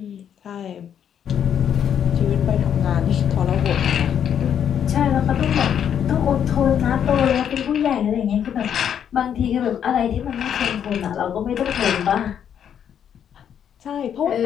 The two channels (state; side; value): quieter; right; 8.8 dB